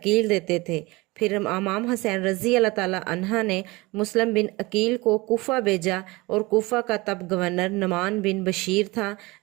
देते थे। फिर इमाम हुसैन रजी अल्लाह ताला अन्हा ने मुस्लिम बिन अकील को कूफा भेजा और कूफा का तब गवर्नर नुमान बिन बशीर था,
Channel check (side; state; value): left; quieter; 22.8 dB